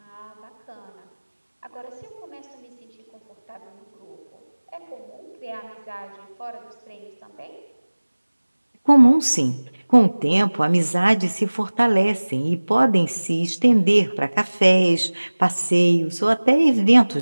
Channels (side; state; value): both; inverted; correlation -1.00